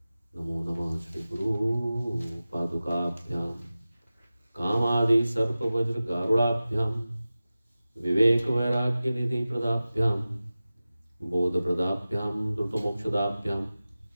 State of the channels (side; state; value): both; inverted; correlation -0.96